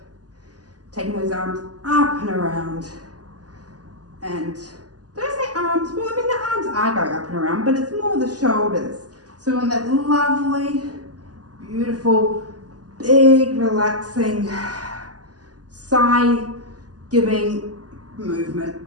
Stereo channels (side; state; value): left; late; 0.68 ms